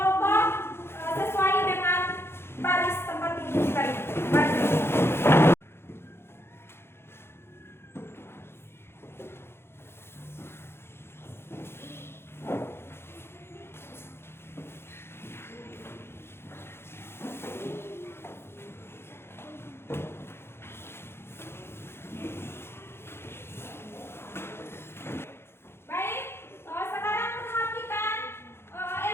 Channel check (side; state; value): right; late; 0.12 ms